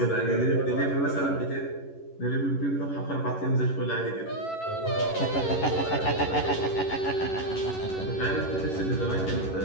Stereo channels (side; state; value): right; late; 11 ms